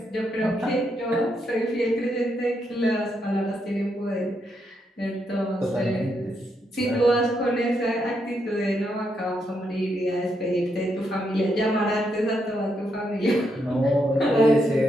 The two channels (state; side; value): normal; both; correlation 0.79